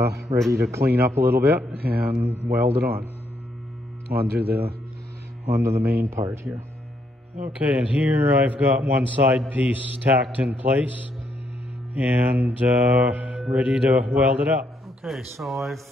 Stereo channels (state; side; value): normal; both; correlation 0.75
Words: ready to clean up a little bit and weld it onto the main part here. Okay, and here I've got one side piece tacked in place and ready to weld it up. Okay, so I've